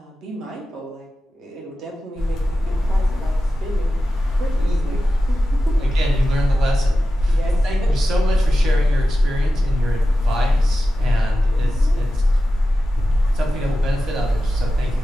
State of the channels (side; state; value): both; normal; correlation 0.93